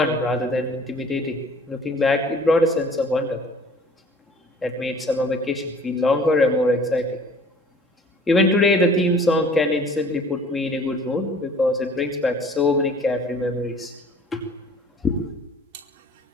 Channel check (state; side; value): normal; both; correlation 0.51